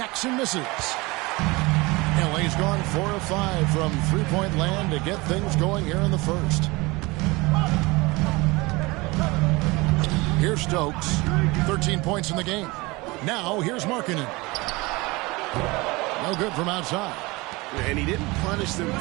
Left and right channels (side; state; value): left; quieter; 23.5 dB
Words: misses. LA's gone 4 of 5 from three-point land to get things going here in the first. Here's Stokes. 13 points in the game. Now here's Markkanen. No good from outside. And he didn't punish them